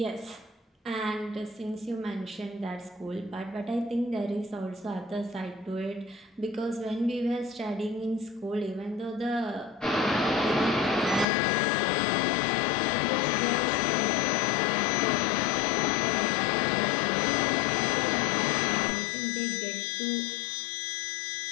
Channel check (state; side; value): drops out; right; at 11.2 s